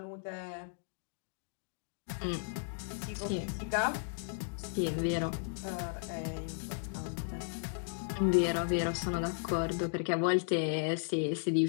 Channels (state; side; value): silent; right; digital silence